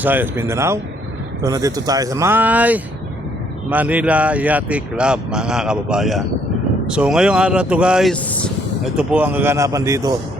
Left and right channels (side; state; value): both; normal; correlation 0.67